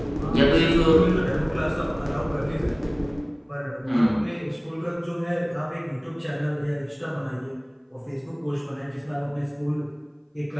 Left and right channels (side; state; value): both; identical; correlation 1.00